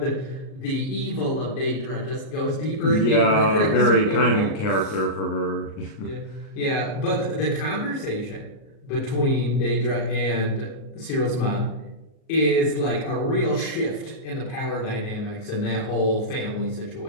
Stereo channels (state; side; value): late; right; 38 ms